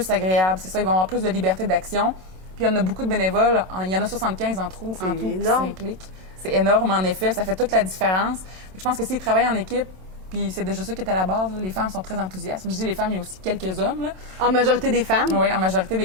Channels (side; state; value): left; late; 27 ms